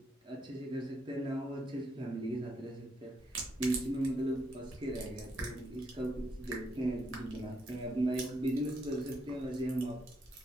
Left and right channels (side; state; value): both; normal; correlation 0.77